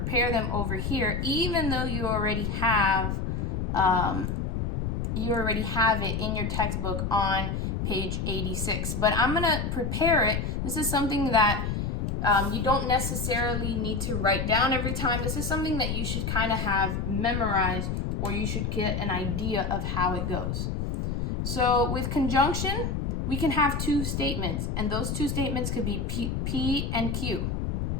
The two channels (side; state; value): left; noise; rumble, 1 dB below the sound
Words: them over here, even though you already have it in your textbook on page 86. But I'm going to prepare it. This is something that you don't necessarily need to write down every time. This is something that you should kind of have memorized, or you should get an idea of how it goes. So with conjunction, we can have two statements, and those two statements could be P and Q.